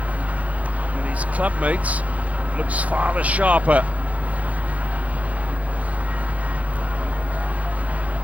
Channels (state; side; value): late; left; 0.068 ms